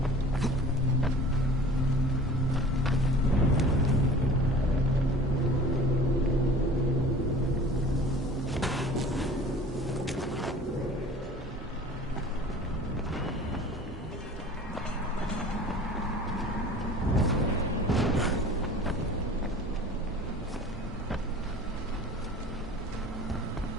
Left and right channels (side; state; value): both; normal; correlation 0.44